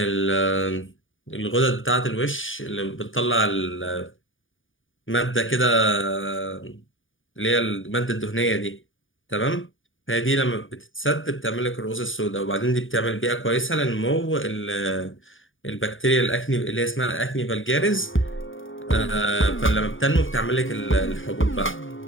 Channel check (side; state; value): right; late; 0.57 ms